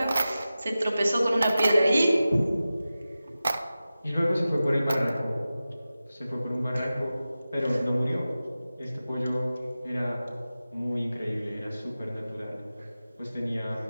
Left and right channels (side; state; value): both; inverted; correlation -0.95